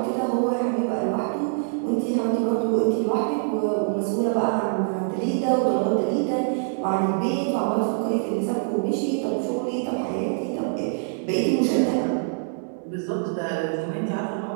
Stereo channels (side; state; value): left; silent; digital silence